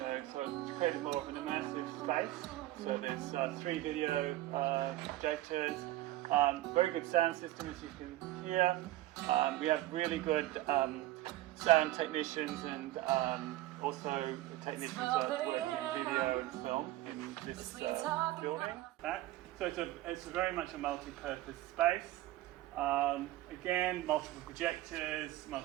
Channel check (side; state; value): left; quieter; 16.2 dB